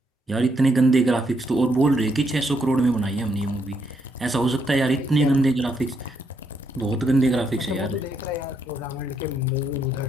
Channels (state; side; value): normal; both; correlation 0.76